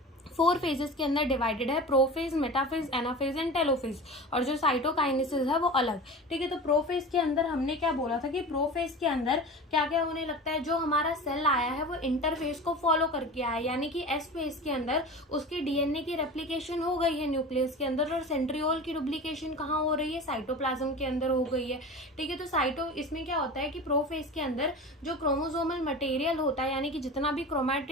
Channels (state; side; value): normal; both; correlation 0.33